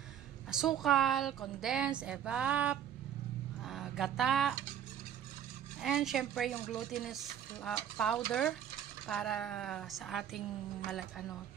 Asukal, condensed, evap, gata, and syempre yung glutinous powder para sa ating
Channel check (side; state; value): left; quieter; 9.6 dB